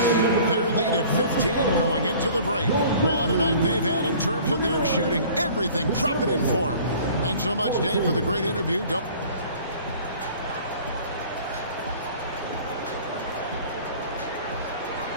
Their lead at 15 going into the break. What a night they've had in terms of their shooting. Everything dropping in for them. Thanks so much, Dave, for the great interview.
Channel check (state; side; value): inverted; both; correlation -0.48